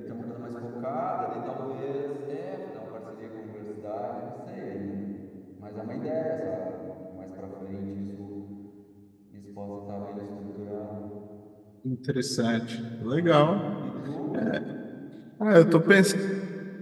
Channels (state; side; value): identical; both; correlation 1.00